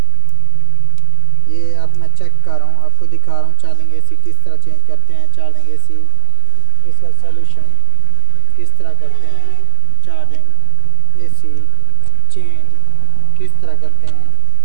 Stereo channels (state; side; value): different; both; correlation 0.00